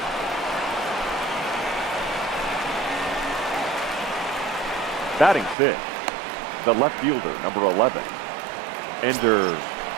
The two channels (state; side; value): drops out; left; at 5.6 s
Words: Batting fifth, the left fielder, number 11, Ender